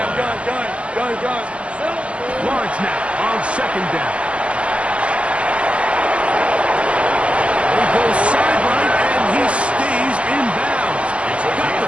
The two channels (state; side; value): late; left; 0.058 ms